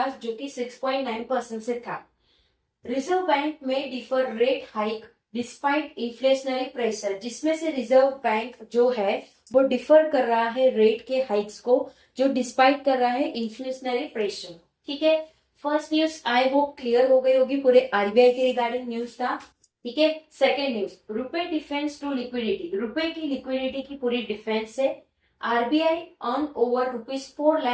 जो कि 6.9% से था। रिजर्व बैंक में differ rate hike despite inflationary pressure, जिसमें से रिजर्व बैंक जो है वो डिफर कर रहा है रेट के हाइक्स को, जो डिस्पाइट कर रहा है इन्फ्लेशनरी प्रेशर, ठीक है। First news I hope clear हो गई होगी, पूरे आरबीआई के रिगार्डिंग न्यूज था, ठीक है। सेकेंड न्यूज, रुपए डिफेंस टू लिक्विडिटी, रुपए की लिक्विडिटी की पूरी डिफेंस है। RBI earn over ₹4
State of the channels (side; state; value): both; identical; correlation 1.00